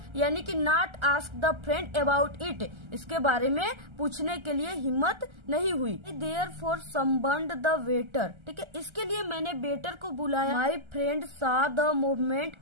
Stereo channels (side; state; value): left; late; 1.3 ms